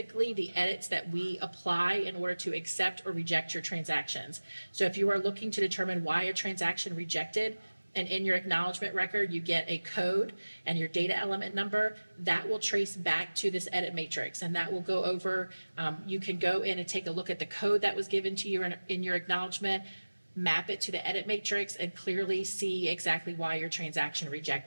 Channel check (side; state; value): both; inverted; correlation -1.00